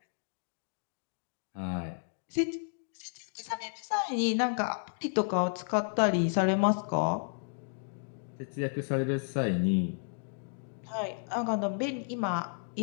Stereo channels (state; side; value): silent; right; digital silence